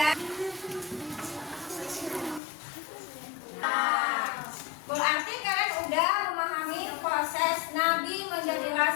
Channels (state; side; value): drops out; right; at 2.4 s